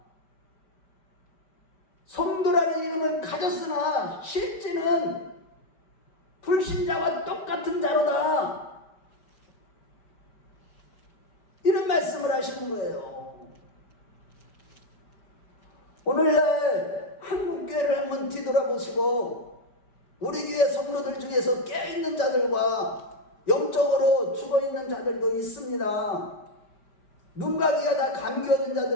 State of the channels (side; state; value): right; late; 5.1 ms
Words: 성도라는 이름은 가졌으나 실제는 불신자와 똑같은 자로다. 이런 말씀을 하시는 거예요. 오늘날 한국교회를 한번 뒤돌아보시고 우리 교회 성도들 중에서 깨어있는 자들과 영적으로 죽어있는 자들도 있습니다. 눈과 귀가 다 감겨진